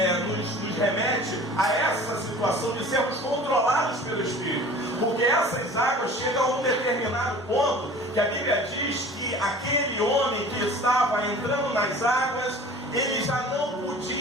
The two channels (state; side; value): normal; both; correlation 0.44